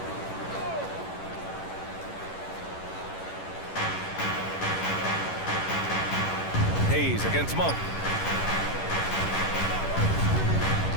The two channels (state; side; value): late; right; 11 ms